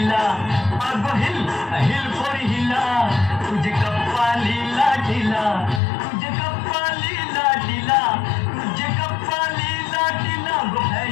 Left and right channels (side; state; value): right; drops out; at 5.8 s